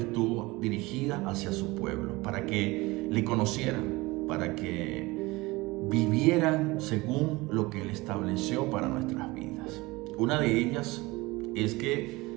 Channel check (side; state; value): left; quieter; 22.0 dB